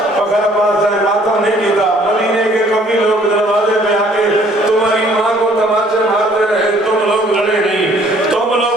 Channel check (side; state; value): both; normal; correlation 0.59